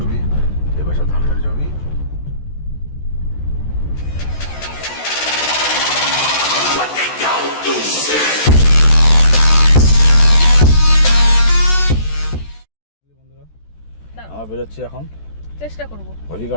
এপাশে ধানের জমি। আমরা বেরোচ্ছি এখন, চেষ্টা করব।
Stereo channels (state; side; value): late; right; 14 ms